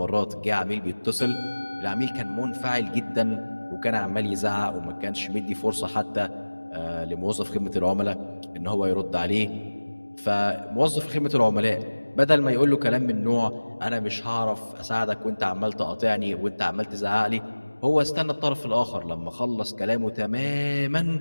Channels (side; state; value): both; inverted; correlation -1.00